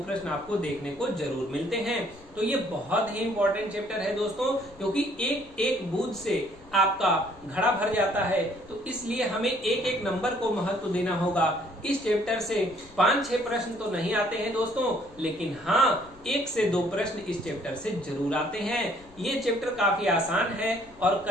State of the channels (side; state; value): left; noise; rumble, 24 dB below the sound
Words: प्रश्न आपको देखने को जरूर मिलते हैं। तो ये बहुत ही इंपॉर्टेंट चैप्टर है दोस्तों, क्योंकि एक एक बूंद से आपका घड़ा भर जाता है। तो इसलिए हमें एक एक नंबर को महत्व देना होगा। इस चैप्टर से 5-6 प्रश्न तो नहीं आते हैं दोस्तों, लेकिन हाँ 1 से 2 प्रश्न इस चैप्टर से जरूर आते हैं। ये चैप्टर काफी आसान है और